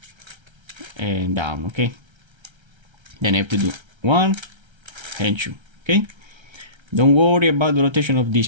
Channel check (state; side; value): late; left; 1.3 ms